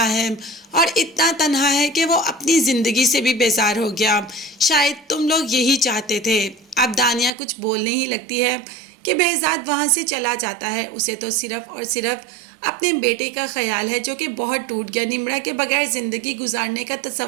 है, और इतना तन्हा है कि वो अपनी ज़िंदगी से भी बेजार हो गया। शायद तुम लोग यही चाहते थे। अब दानिया कुछ बोलने ही लगती है कि behzad वहाँ से चला जाता है। उसे तो सिर्फ़ और सिर्फ अपने बेटे का ख्याल है जो कि बहुत टूट गया, निम्रा के बगैर ज़िंदगी गुजारने का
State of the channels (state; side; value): drops out; left; at 7.3 s